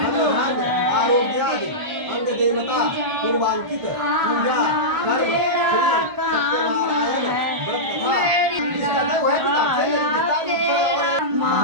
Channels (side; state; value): left; late; 1.4 ms